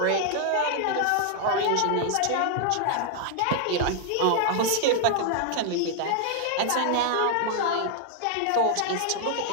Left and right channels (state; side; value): different; both; correlation 0.00